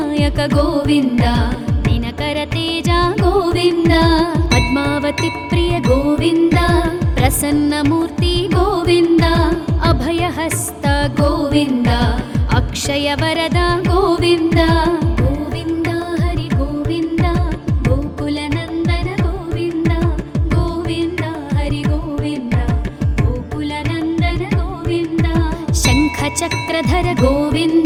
ಗೋವಿಂದ ದಿನಕರ ತೇಜ ಗೋವಿಂದ ಪದ್ಮಾವತಿ ಪ್ರಿಯ ಗೋವಿಂದ ಪ್ರಸನ್ನ ಮೂರ್ತಿ ಗೋವಿಂದ ಅಭಯಹಸ್ತ ಗೋವಿಂದ ಅಕ್ಷಯ ವರದ ಗೋವಿಂದ ಗೋವಿಂದ ಹರಿ ಗೋವಿಂದ ಗೋಕುಲ ನಂದನ ಗೋವಿಂದ ಗೋವಿಂದ ಹರಿ ಗೋವಿಂದ ಗೋಕುಲ ನಂದನ ಗೋವಿಂದ ಶಂಖ ಚಕ್ರಧರ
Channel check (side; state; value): both; identical; correlation 1.00